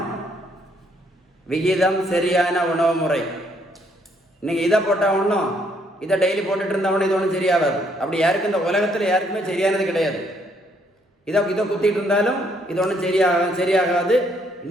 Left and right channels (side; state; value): both; normal; correlation 0.69